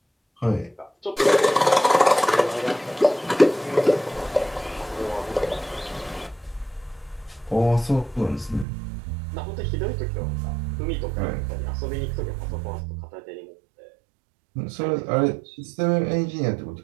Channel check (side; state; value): left; drops out; at 8.7 s